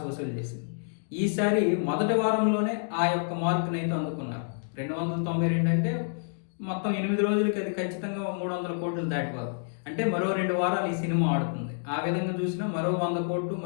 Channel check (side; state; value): right; silent; digital silence